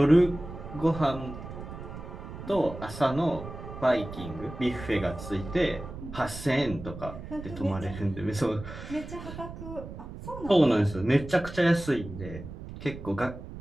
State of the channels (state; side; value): noise; right; rumble, 11 dB below the sound